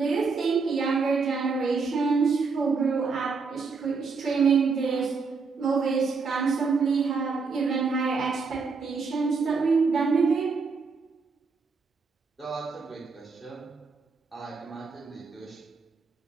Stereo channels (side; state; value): left; quieter; 4.8 dB